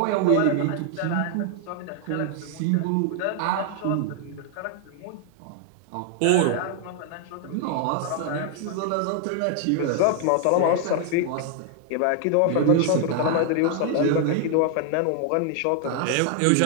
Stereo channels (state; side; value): different; both; correlation 0.00